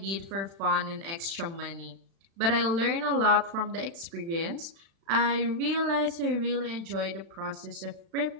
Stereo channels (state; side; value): late; left; 36 ms